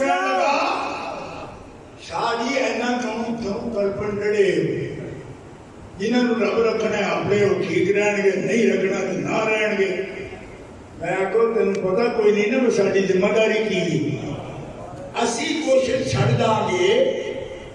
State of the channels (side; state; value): both; identical; correlation 1.00